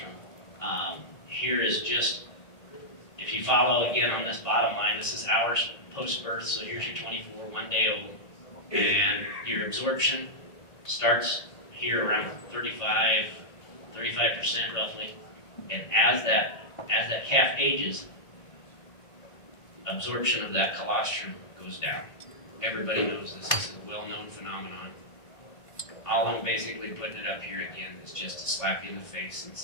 Here is just, if you follow again on this bottom line, this is hours post-birth, so here's your 24, 1 day old, and your absorption starts here around 35% roughly, and as that calf ages, absorption of that colostrum goes down. Everybody knows this is a well-known phenomenon. All I'm basically putting it up here again is just to slap you in the face and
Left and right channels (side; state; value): right; late; 1.6 ms